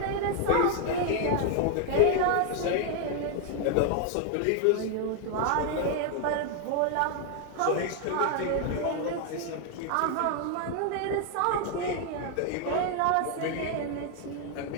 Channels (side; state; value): both; different; correlation 0.00